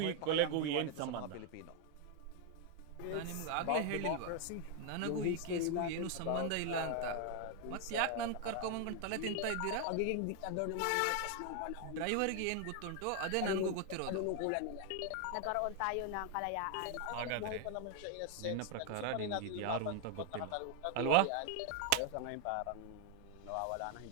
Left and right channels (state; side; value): different; both; correlation 0.00